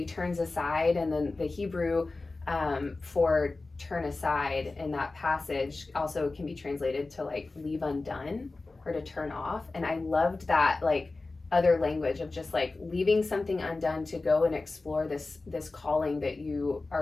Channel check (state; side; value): quieter; right; 3.4 dB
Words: turns aside, and then the Hebrew for turn aside in that passage also can be translated to like leave undone or to turn off. And I loved that like other language of just like leaving something undone to go and explore this calling that you